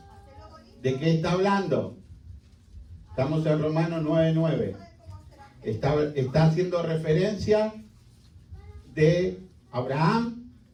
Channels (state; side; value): identical; both; correlation 1.00